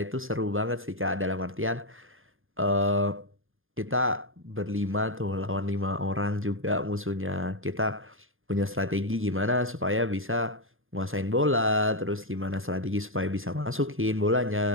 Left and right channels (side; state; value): left; late; 0.59 ms